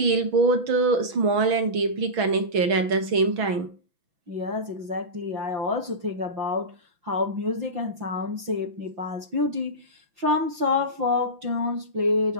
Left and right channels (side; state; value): left; late; 6.0 ms